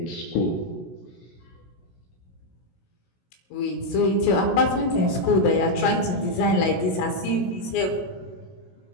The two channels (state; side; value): late; right; 16 ms